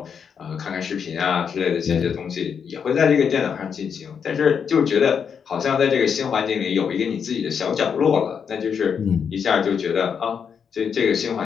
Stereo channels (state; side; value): quieter; right; 7.0 dB